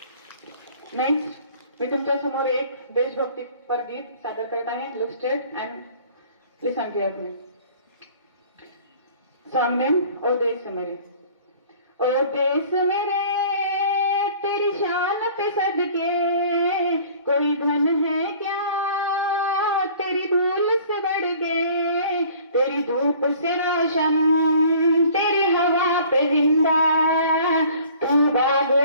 नेक्स्ट मी तुमच्या समोर एक देशभक्तीपर गीत सादर करत आहे. Look straight and listen carefully. Song name ओ देश मेरे. ओ देश मेरे तेरी शान पे सदके, कोई धन है क्या तेरी धूल से बढ़ के। तेरी धूप से रोशन, तेरी हवा पे जिंदा, तू बाग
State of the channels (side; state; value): both; inverted; correlation -0.51